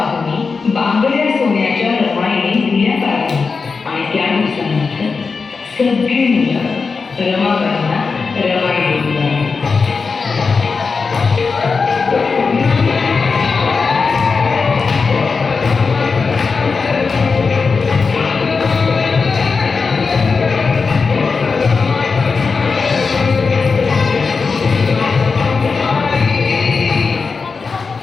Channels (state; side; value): quieter; right; 4.8 dB